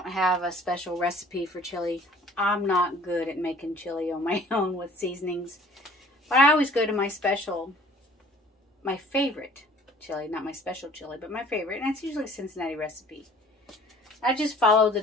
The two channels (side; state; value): both; normal; correlation 0.52